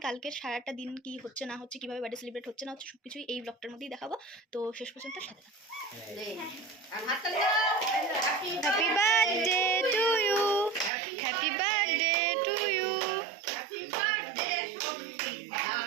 কালকের সারাটা দিন কি হচ্ছে না হচ্ছে, কিভাবে বার্থডে সেলিব্রেট হচ্ছে না হচ্ছে, সবকিছুই এই ব্লগটার মধ্যেই দেখাবো। তো শেষ পর্যন্ত সাথে থাকো। Happy birthday to you, happy birthday to you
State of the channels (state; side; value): drops out; left; at 10.9 s